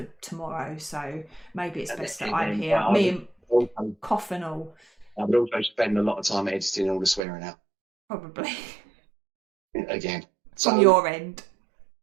tomorrow, so maybe it's best that I'm here. Me and cough and all. I would also spend a lot of time editing all the swearing out. Probably. Again. From your end.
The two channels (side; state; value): left; drops out; at 7.2 s